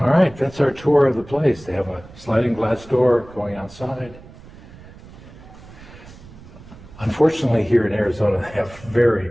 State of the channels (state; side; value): noise; right; rumble, 20 dB below the sound